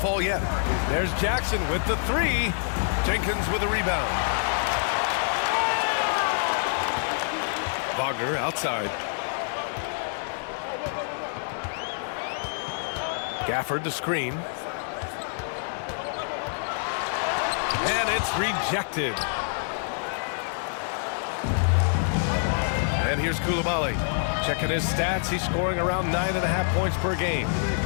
yet. There's Jackson with the 3. Jenkins with a rebound. Wagner outside. Gafford the screen. And it's rejected. And here's Coulibaly. Checking his stats, he's scoring around 9.5 points per game.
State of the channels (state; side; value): silent; right; digital silence